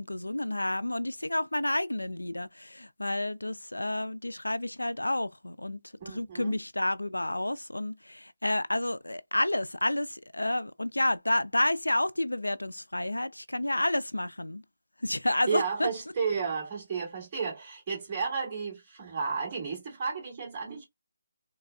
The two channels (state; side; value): inverted; both; correlation -0.94